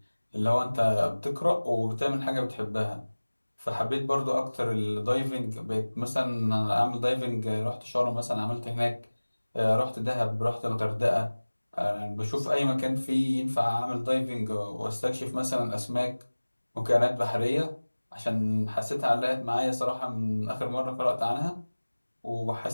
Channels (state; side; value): inverted; both; correlation -1.00